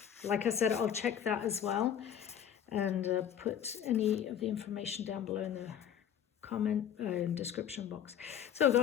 Like I said, I'll check that as well and put any of the information down below in the comment description box. So I've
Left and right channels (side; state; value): right; quieter; 9.3 dB